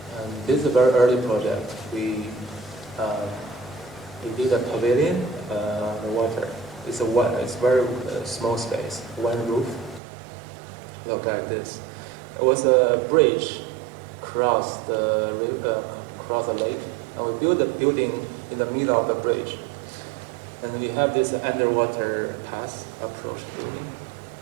And this is a very early project. We did a pavilion, the water. It's very small space, one roof. Look like this. It was a bridge across the lake, and we built a building in the middle of the bridge. And we have this underwater path approach building,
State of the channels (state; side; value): drops out; left; at 10.0 s